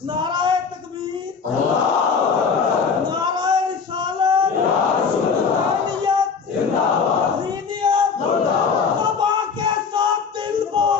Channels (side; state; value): right; quieter; 5.7 dB